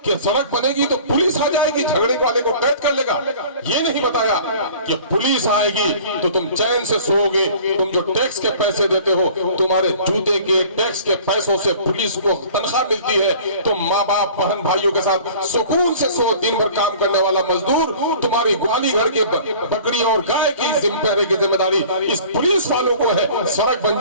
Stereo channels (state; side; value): inverted; both; correlation -0.46